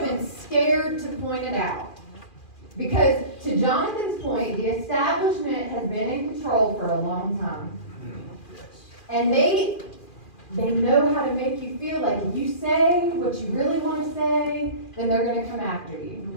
scared to point it out. Because, to Jonathan's point, the establishment has been in control for a long time. And they know how to make you feel like if you say what you really want to say, then they're going to come after you.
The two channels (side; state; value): right; late; 2.4 ms